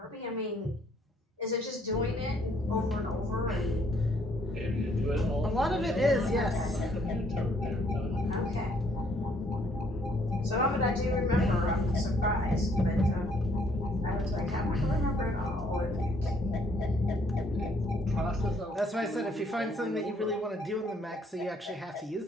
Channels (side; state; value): both; normal; correlation 0.65